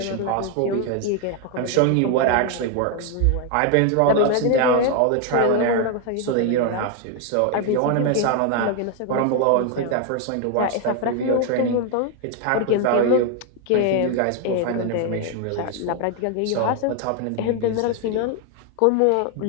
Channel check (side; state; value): both; different; correlation 0.01